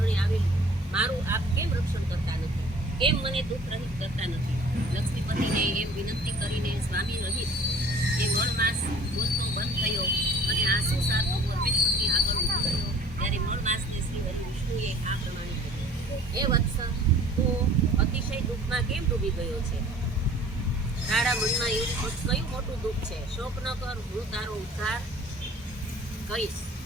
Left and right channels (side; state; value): both; normal; correlation 0.50